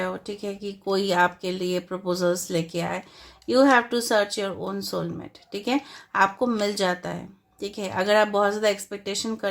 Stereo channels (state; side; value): identical; both; correlation 1.00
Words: हो, ठीक है, कि कोई आपके लिए प्रपोजल्स लेके आए। You have to search your own soulmate, ठीक है, आपको मिल जाता है, ठीक है। अगर आप बहुत ज़्यादा एक्सपेक्टेशन